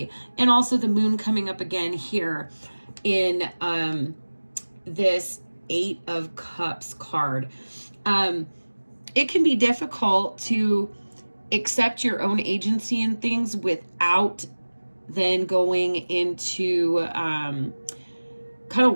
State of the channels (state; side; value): inverted; both; correlation -1.00